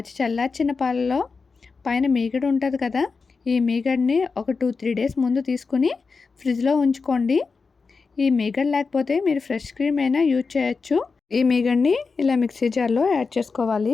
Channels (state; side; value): quieter; right; 4.7 dB